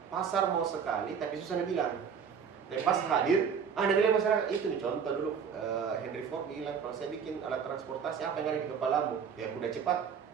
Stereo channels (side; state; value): left; quieter; 6.9 dB